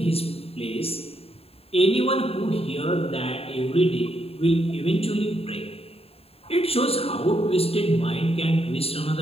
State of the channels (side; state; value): right; late; 0.28 ms